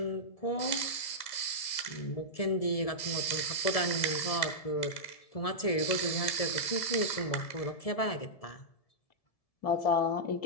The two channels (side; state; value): right; late; 1.7 ms